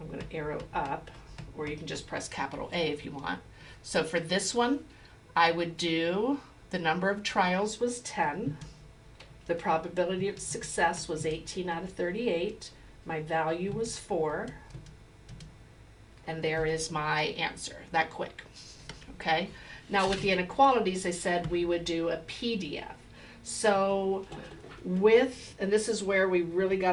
going to arrow up, or you can just press capital A if you want. So for this one, I would do the number of trials was 10. The probability of success was 18 out of 38. My value was 4. And there is my answer, that quick. Okay? Now with the inequalities, I said we would do a PDF. So and this is where we really got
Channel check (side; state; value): both; identical; correlation 1.00